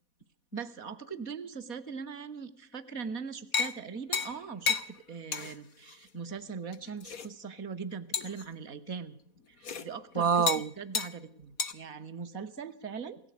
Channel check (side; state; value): right; late; 4.1 ms